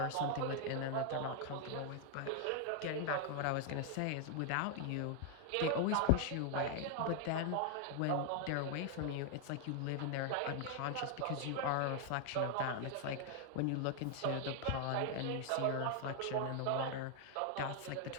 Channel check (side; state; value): both; different; correlation 0.00